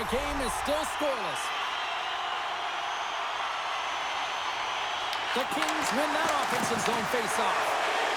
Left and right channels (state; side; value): identical; both; correlation 1.00